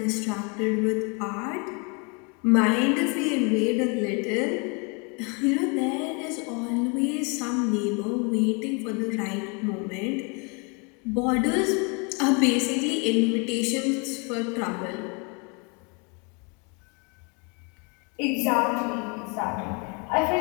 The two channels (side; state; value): right; quieter; 32.9 dB